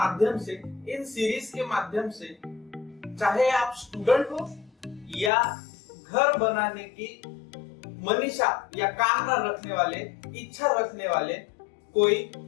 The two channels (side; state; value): right; drops out; at 5.3 s